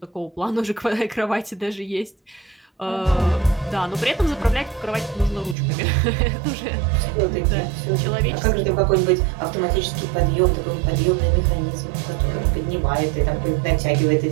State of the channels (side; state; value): left; drops out; at 5.6 s